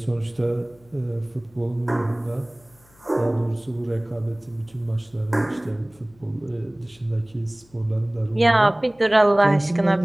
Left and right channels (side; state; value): left; noise; hum, 29 dB below the sound